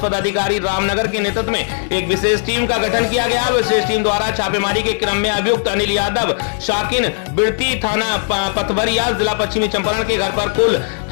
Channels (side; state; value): right; silent; 68 dB below the other